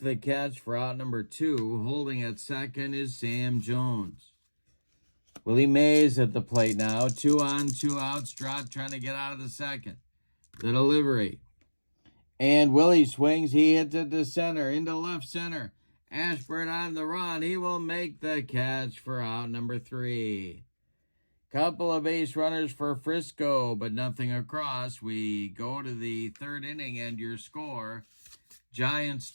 catch for out number 2. Holding at second is Sam Jones. Willie Mays at the plate now. 2 on, 2 outs. Drott trying to get out of the second. The delivery. And Willie swings. He hits it to center, into left center. Ashburn on the run. He will make the catch for out number 3. Couple of base runners for Frisco, but nothing across. We go to the third inning, and your score, Giants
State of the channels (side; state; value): both; inverted; correlation -1.00